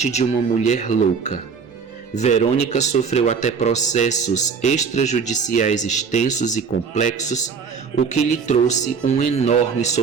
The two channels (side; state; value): left; quieter; 5.9 dB